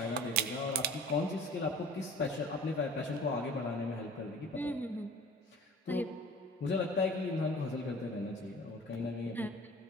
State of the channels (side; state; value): both; normal; correlation 0.45